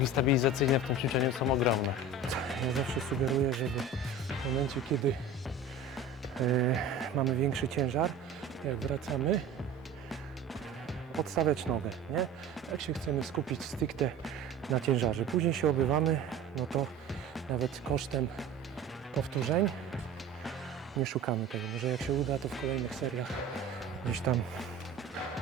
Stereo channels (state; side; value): quieter; left; 3.4 dB